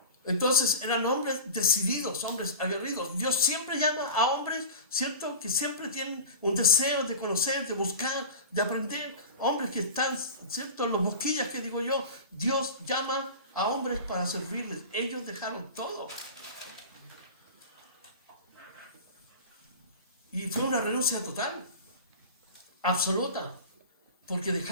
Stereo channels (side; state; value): both; inverted; correlation -0.32